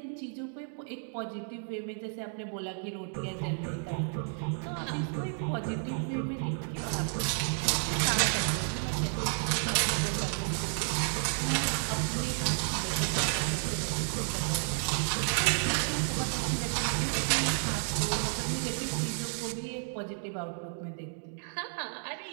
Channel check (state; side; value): silent; left; 57 dB below the other